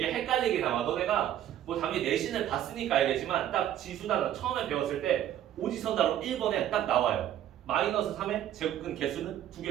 헷갈리게 나와. 너네가 뭐 당연히 내신을 봤으니까 알겠지만 딱 지수단어 처음에 배웠을 때 오지선다로 1번에 딱 나와요. 마이너스 3의 제곱근 개수는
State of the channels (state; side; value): quieter; left; 11.5 dB